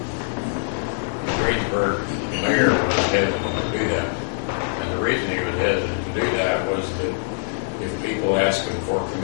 Greensburg, the mayor was hesitant to do that. And the reason he was hesitant to do that was that if people ask him for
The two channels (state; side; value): silent; right; digital silence